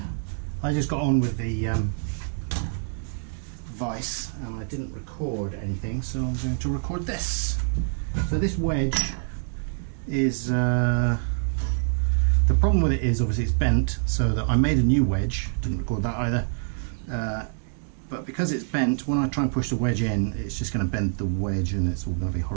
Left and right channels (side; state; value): left; silent; digital silence